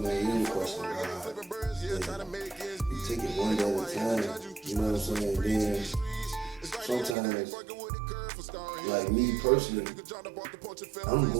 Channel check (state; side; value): drops out; left; at 7.2 s